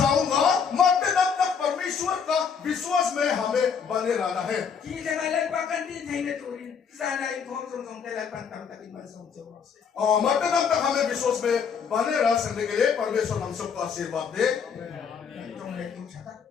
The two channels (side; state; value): right; quieter; 6.6 dB